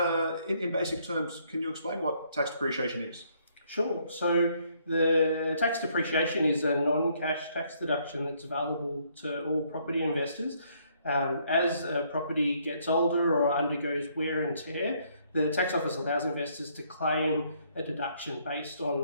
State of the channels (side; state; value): both; inverted; correlation -0.68